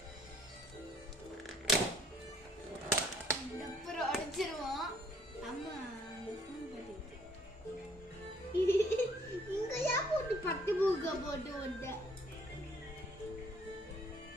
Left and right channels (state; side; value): normal; both; correlation 0.63